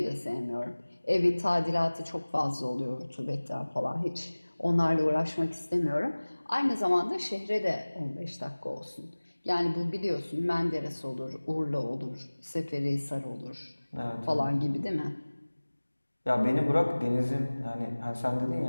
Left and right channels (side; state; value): both; inverted; correlation -1.00